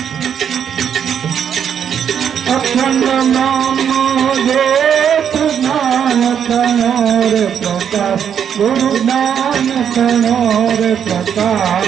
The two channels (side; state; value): left; quieter; 8.3 dB